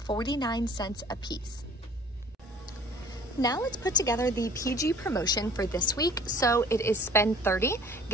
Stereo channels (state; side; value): normal; both; correlation 0.49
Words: cents a piece. Now let's put together the PG promotion for this week. So it is spend 30,